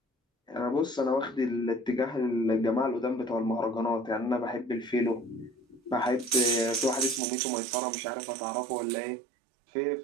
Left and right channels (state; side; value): drops out; left; at 7.2 s